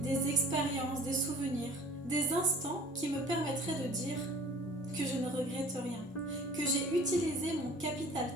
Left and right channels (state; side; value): normal; both; correlation 0.48